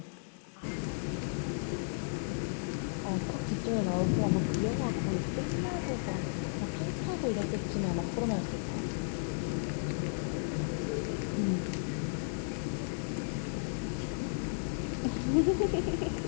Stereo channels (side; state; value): right; silent; digital silence